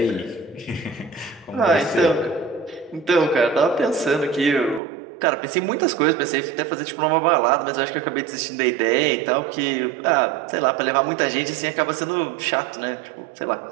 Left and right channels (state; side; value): drops out; left; at 4.8 s